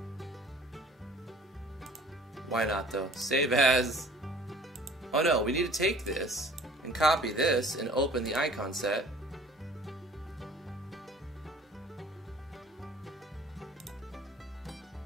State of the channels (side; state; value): both; normal; correlation 0.51